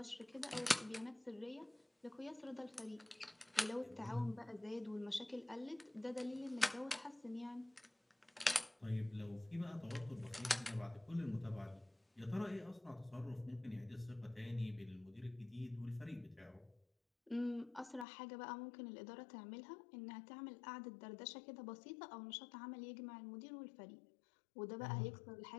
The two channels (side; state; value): right; drops out; at 18.1 s